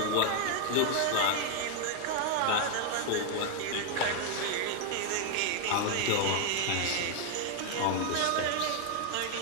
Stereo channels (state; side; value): different; both; correlation 0.01